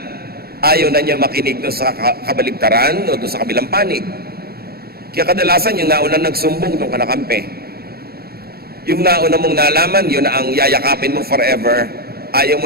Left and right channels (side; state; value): left; late; 0.45 ms